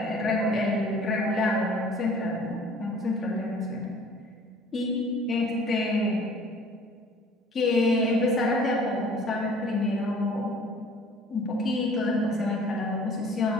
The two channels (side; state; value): both; normal; correlation 0.51